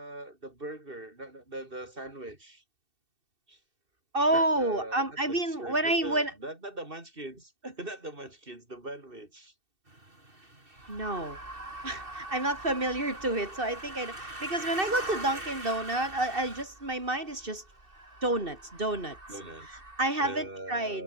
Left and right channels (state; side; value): late; left; 2.7 ms